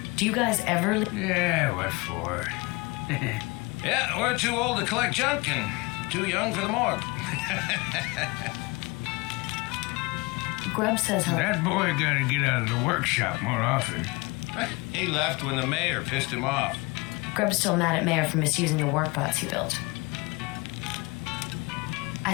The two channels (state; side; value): quieter; right; 25.4 dB